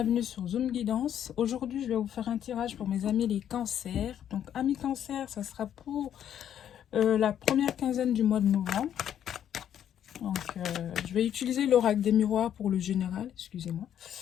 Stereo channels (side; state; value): right; quieter; 9.9 dB